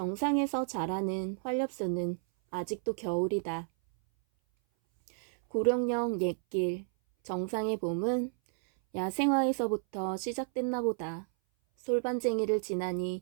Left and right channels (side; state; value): left; silent; 57 dB below the other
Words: 자라는 활엽수는 아직도 겨울이다. 구룡령 옛길, 정상의 봄은 야생화에서부터 시작됐나 보다. 솔반쟁이를 지나니